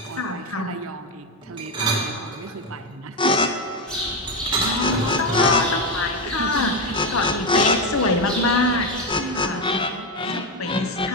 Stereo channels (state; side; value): normal; both; correlation 0.10